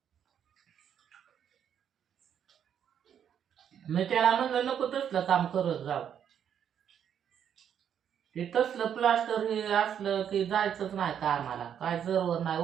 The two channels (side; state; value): left; quieter; 8.8 dB